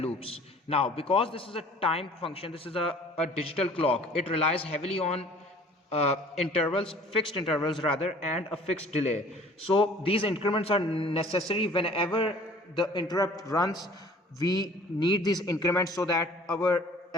Now, because this is a time function, this is a digital clock, it relies heavily on fixed intervals rather, and a fixed delay. So these increments are necessary whenever the interrupt runs. We need these increments so that our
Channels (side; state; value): both; normal; correlation 0.50